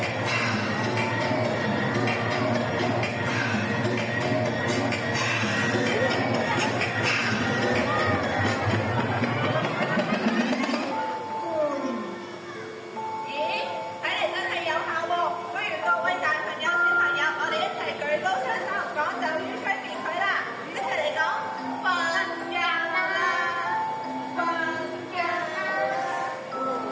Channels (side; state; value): both; identical; correlation 1.00